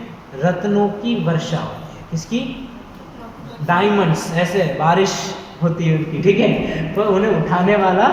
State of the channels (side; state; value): both; identical; correlation 1.00